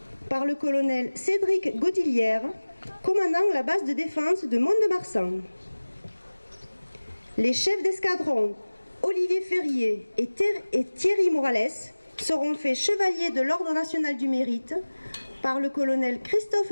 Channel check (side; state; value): both; inverted; correlation -1.00